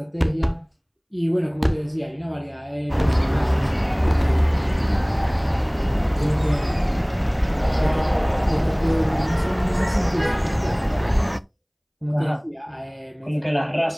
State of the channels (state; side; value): identical; both; correlation 1.00